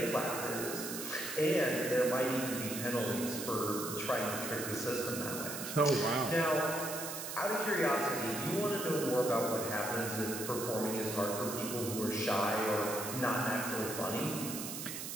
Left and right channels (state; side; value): noise; right; hiss, 6 dB below the sound